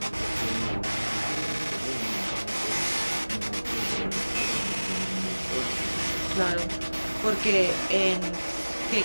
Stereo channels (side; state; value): both; inverted; correlation -1.00